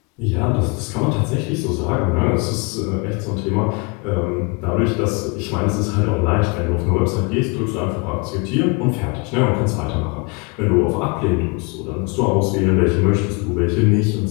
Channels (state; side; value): quieter; right; 30.6 dB